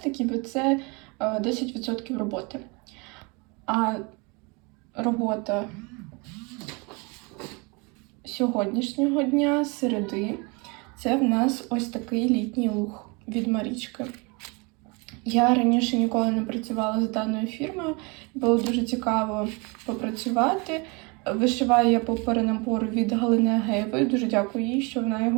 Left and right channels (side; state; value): left; quieter; 29.3 dB